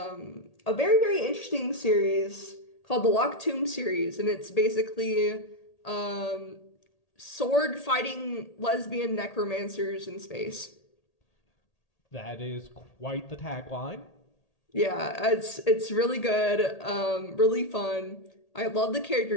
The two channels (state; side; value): late; right; 1.8 ms